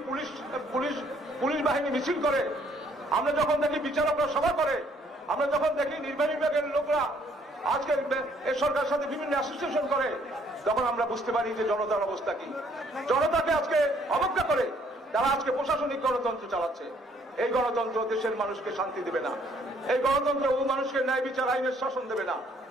পুলিশ বাহিনী মিছিল করে, আমরা যখন দেখি বিচারকরা সভা করে, আমরা যখন দেখি নির্বাহী বিভাগের লোকরা আজকে এই সরকারের সাথে বিভিন্ন অ্যাসোসিয়েশন করে, তখন আমরা বুঝতে পারি যে জনতার অবস্থা কি। জনতাকে আজকে অবজ্ঞা করে তারা আজকে প্রশাসনিক গণতন্ত্র চালাচ্ছে। এই গণতন্ত্র দেশের মানুষকে শান্তি দেবে না, এই গণতন্ত্র ও মানুষকে ন্যায় বিচার আইনের শাসন দেবে না,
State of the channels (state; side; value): normal; both; correlation 0.64